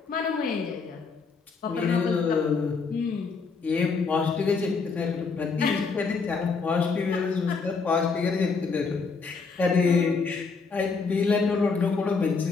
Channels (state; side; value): quieter; right; 4.8 dB